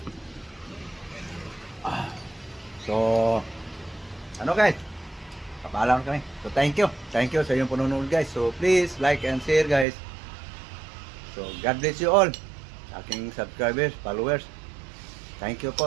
So, ano guys? Kapaalam kami. So, thank you. Thank you sa inyong panonood guys. So, please like and share guys. So, God bless you all. Aking subscribers, followers. Thank you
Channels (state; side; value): drops out; left; at 9.9 s